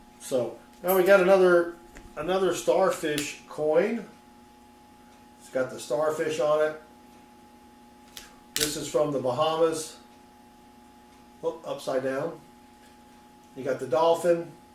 so now we got another starfish coin. It's got the starfish on it. This is from the Bahamas. Oh, upside down. You got the dolphin.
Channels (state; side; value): identical; both; correlation 1.00